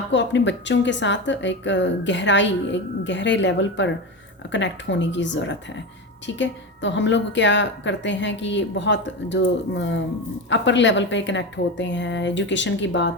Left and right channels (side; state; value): both; normal; correlation 0.20